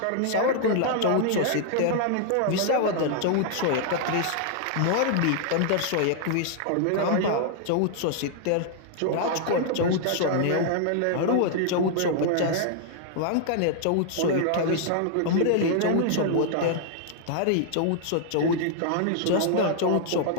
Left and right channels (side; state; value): both; different; correlation -0.01